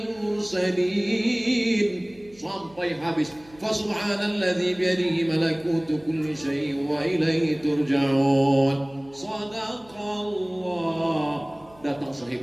mursalin sampai habis. Fasubhanalladzi biyadihi malakutu kulli syai'in wa ilaihi turja'un. Shadaqallah. Datang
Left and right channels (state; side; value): noise; right; hum, 26 dB below the sound